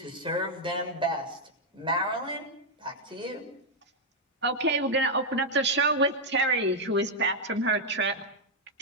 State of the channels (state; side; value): normal; both; correlation -0.02